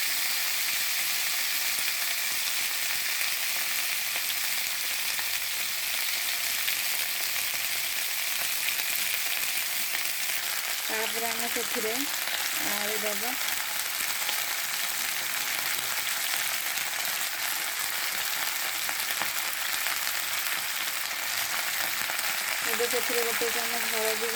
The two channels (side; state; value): both; identical; correlation 1.00